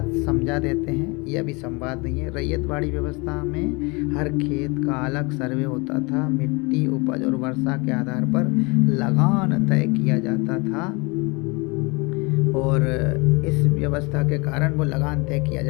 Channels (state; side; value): quieter; right; 27.8 dB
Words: समझा देते हैं, यह भी संवाद नहीं है। रैयतवाड़ी व्यवस्था में हर खेत का अलग सर्वे होता था, मिट्टी, उपज और वर्षा के आधार पर लगान तय किया जाता था, और इस व्यवस्था के कारण वो लगान तय किया